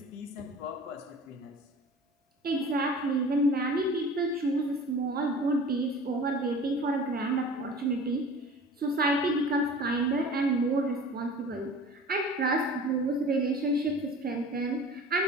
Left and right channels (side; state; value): both; normal; correlation 0.41